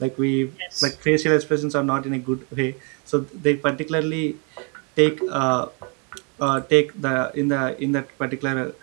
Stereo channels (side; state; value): left; quieter; 35.2 dB